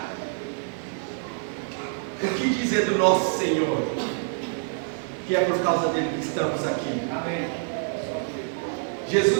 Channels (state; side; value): silent; left; 61 dB below the other